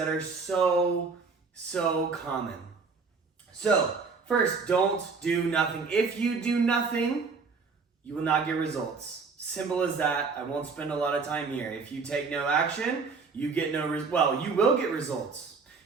are so common. So, first, don't do nothing. If you do nothing, you will not get results. Simple as that. I won't spend a lot of time here. If you take no action, you get you will get results.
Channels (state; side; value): quieter; left; 4.8 dB